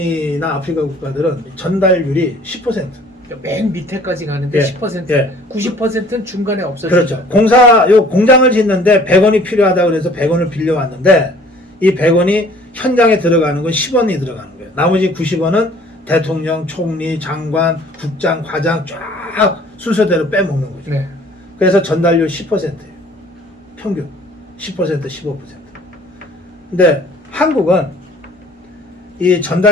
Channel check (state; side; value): normal; both; correlation 0.53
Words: 아프리카 국가들은 전달률이 10%. 맨 밑에까지 가는데 예, 10%, 예. 90%는 중간에 없어지죠. 그렇죠. 공장을 짓는데 100원이 필요하다고 그래서 100원을 빌려왔는데 이 100원이 현장에 들어가는 건 10원이 들어가는 거예요. 나머지 90원은 대통령, 총리, 장관, 국장, 과장 쫙 순서대로 빼먹는 거죠. 네. 그래서 전달률 10%예요. 평균 10%, 15%. 근데 한국은 이